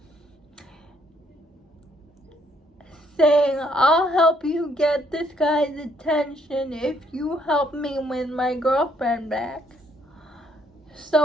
saying, I'll help you get this guy's attention if you help me win my girlfriend back.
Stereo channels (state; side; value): normal; both; correlation 0.69